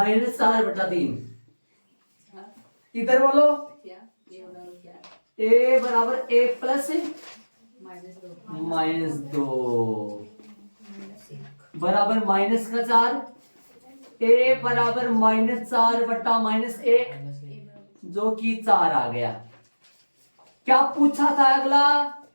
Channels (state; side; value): inverted; both; correlation -1.00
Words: इधर बोलो, ए बराबर 1 प्लस -2 बराबर माइनस का 4। ए बराबर -4/-1, जो कि 4 आ गया। क्या पूछा था अगला?